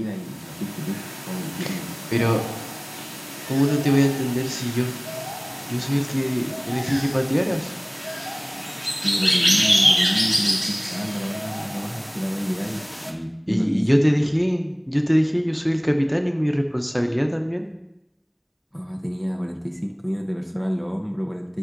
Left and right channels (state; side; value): identical; both; correlation 1.00